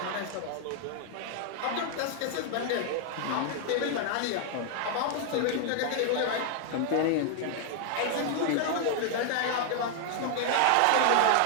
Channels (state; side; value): different; both; correlation 0.00